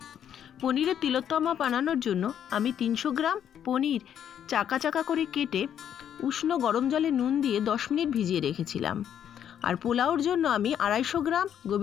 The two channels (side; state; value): right; quieter; 9.4 dB